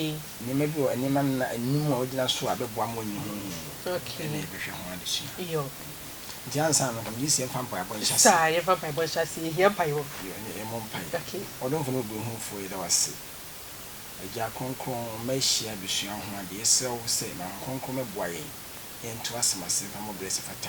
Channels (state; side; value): identical; both; correlation 1.00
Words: ni mebi o enima na enum a ogina so abeboa mo nyi huhu okay ene ebehwe ho adesi yo nti ansa no kam yisi emfa mpa abɔ nhyase sa ye fa pa bɔ hyase hia pa yo ye mo mpa okay ɔdomfo no obi hu fo yi da wase agya kronkron mahia bisua ho ade yesew sɛ ma kronkron meboa yɛn ento asemase fa mo bless